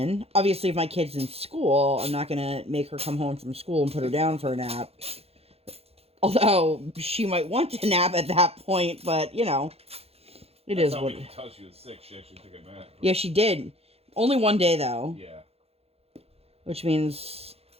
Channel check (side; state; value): left; late; 0.29 ms